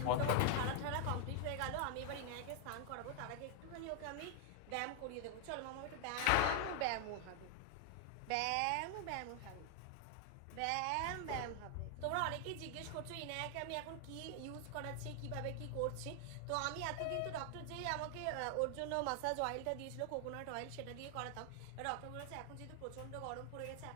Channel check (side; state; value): both; different; correlation 0.00